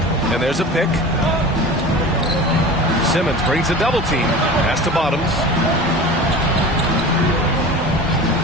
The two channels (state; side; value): normal; both; correlation 0.35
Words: And there's a pick. Simmons brings a double team. Pass to Bottoms.